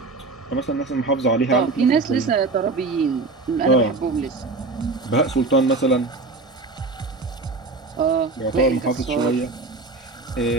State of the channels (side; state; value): left; quieter; 3.7 dB